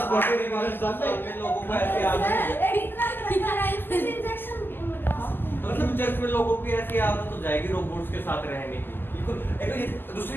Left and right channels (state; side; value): late; right; 0.095 ms